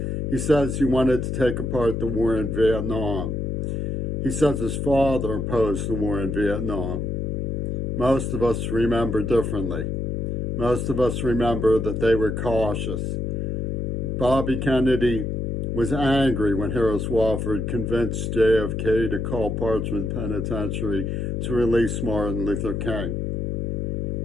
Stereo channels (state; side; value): noise; left; hum, 1 dB below the sound